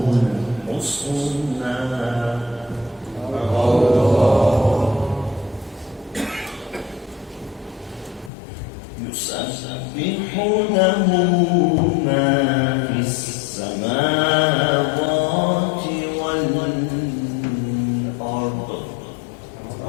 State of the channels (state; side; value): drops out; right; at 8.3 s